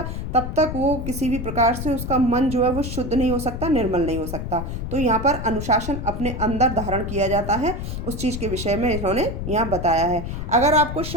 तब तक वो किसी भी प्रकार से उसका मन जो है वो शुद्ध नहीं हो सकता, निर्मल नहीं हो सकता। तो यहाँ पर अनुशासन अपने अंदर धारण किया जाता है, उस चीज़ के विषय में इन्होंने यहाँ बताया है। अगर आपको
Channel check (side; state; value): left; noise; rumble, 5 dB below the sound